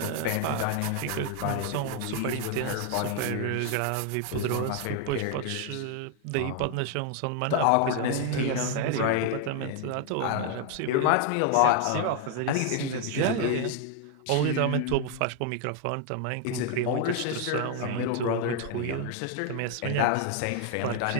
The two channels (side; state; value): both; different; correlation 0.00